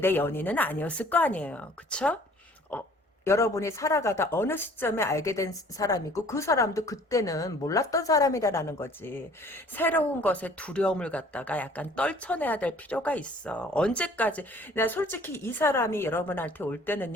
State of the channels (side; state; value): both; normal; correlation 0.53